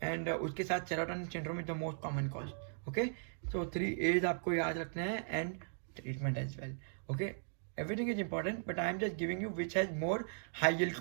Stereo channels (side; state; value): left; silent; digital silence